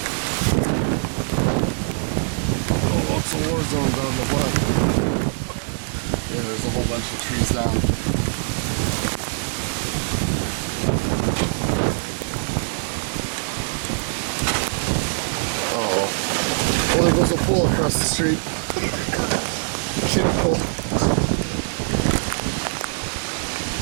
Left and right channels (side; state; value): left; silent; 63 dB below the other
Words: Oh, lots of war zones on the block. Yeah, there's a whole bunch of trees down. Oh, there goes a pool across the street. Kiddie pool.